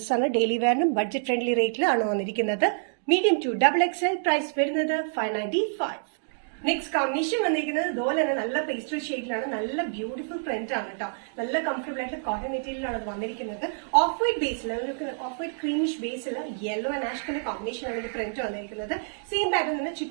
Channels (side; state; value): left; silent; digital silence